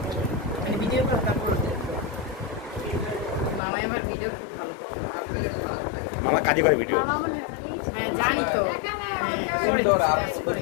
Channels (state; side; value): drops out; right; at 3.6 s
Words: মানে ভিডিও কল তারপর মামা আমার ভিডিও খুব ভালো করে। মামা কাজে করে ভিডিও হ্যাঁ জানি তো সুন্দর আপনি সুন্দর